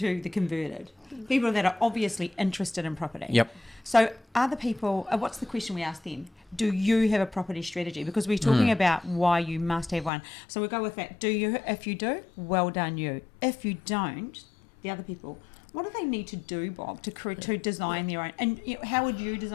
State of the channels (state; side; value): drops out; right; at 10.1 s